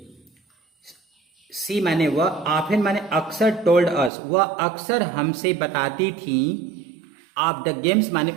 She माने वह, ऑफन माने अक्सर, टोल्ड अस वह अक्सर हमसे बताती थी, ऑफ द गेम्स माने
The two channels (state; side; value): drops out; left; at 4.1 s